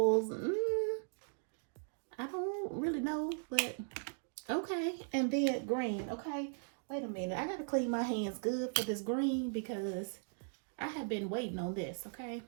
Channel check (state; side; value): silent; left; digital silence